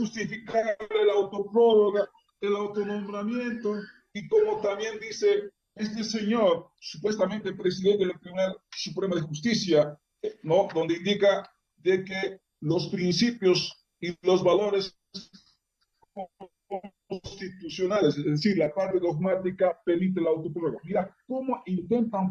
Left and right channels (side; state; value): both; identical; correlation 1.00